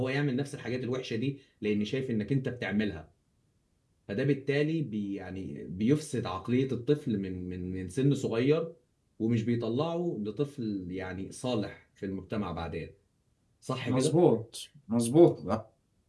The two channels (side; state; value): both; identical; correlation 1.00